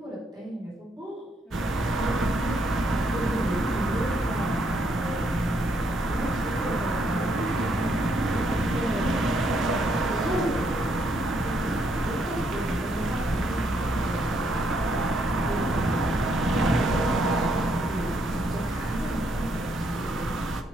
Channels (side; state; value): both; normal; correlation 0.73